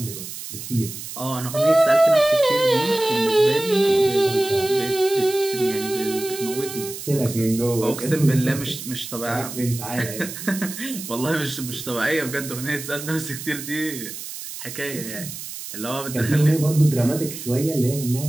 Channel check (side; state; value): right; noise; hiss, 10 dB below the sound